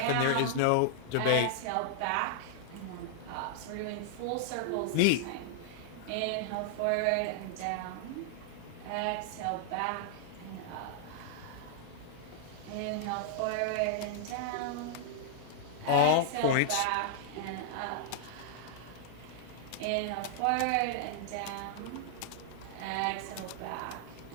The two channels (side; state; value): both; different; correlation -0.01